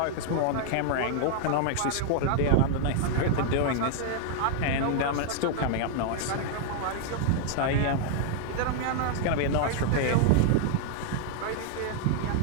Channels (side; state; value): both; different; correlation 0.00